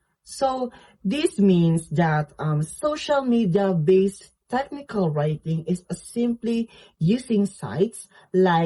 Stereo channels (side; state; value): both; identical; correlation 1.00